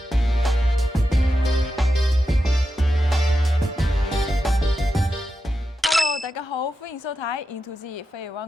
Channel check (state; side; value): normal; both; correlation 0.89